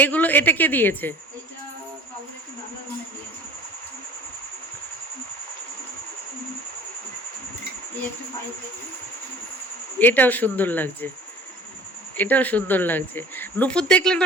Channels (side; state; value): both; normal; correlation 0.46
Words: এগুলো এটা কে দিয়েছে? এটা বাবুর একটু বাংলা মনে দিয়েছে। এই একটা পাইপ দেখি। এটাও সুন্দর লাগছে, এটাও সুন্দর লাগছে। নুপুর দেখলে